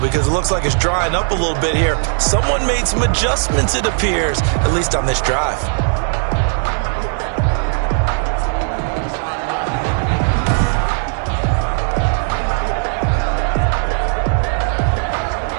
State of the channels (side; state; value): left; silent; 58 dB below the other